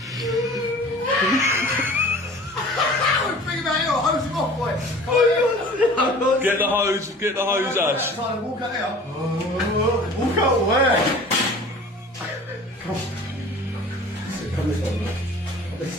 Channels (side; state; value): both; normal; correlation 0.44